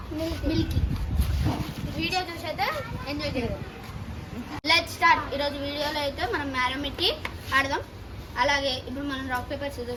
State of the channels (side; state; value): both; identical; correlation 1.00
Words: మిల్కీ. వీడియో చూసి అయితే ఎంజాయ్ చేద్దాం. Let's start. ఈరోజు వీడియోలో అయితే మనం మ్యారమిటీ ఆడదాం. అలాగే ఇప్పుడు మనం రాక్ పేపర్